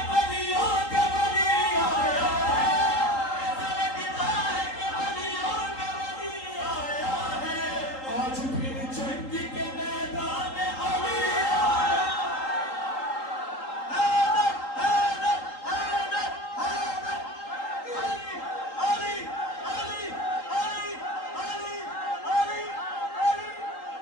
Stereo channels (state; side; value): late; right; 3.8 ms